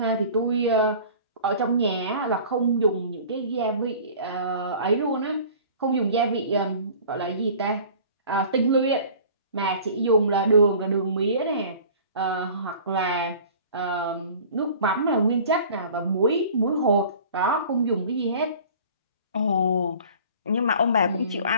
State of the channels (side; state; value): both; inverted; correlation -0.45